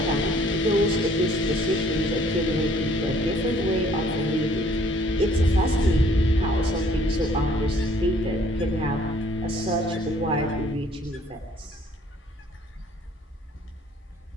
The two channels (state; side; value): normal; both; correlation 0.59